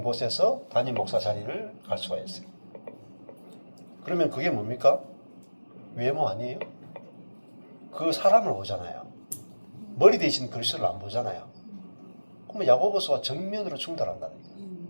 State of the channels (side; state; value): both; inverted; correlation -1.00